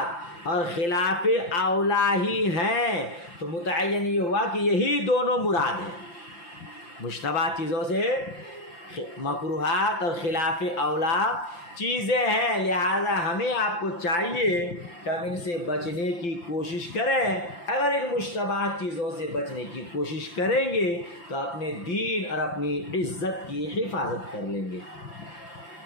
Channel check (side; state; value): right; late; 5.8 ms